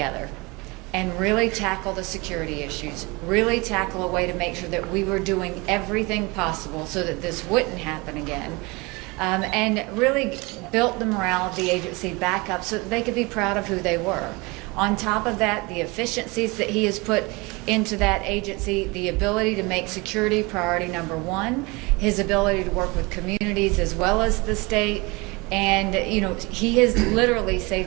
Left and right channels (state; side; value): quieter; left; 25.7 dB